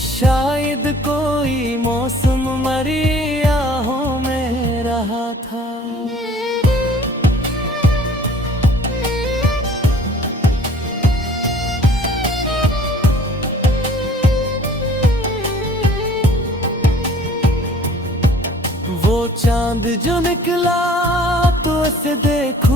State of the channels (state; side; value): normal; both; correlation 0.51